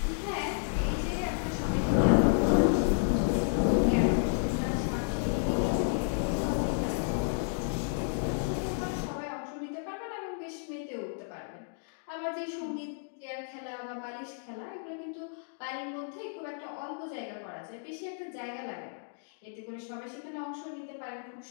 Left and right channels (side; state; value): right; silent; digital silence